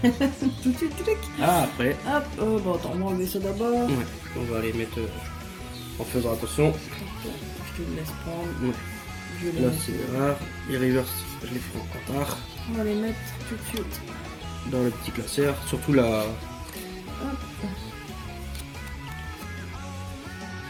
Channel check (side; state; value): both; identical; correlation 1.00